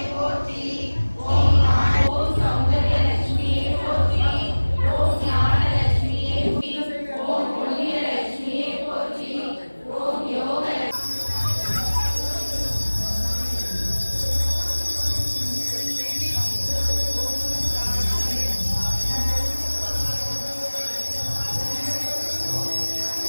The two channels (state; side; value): inverted; both; correlation -1.00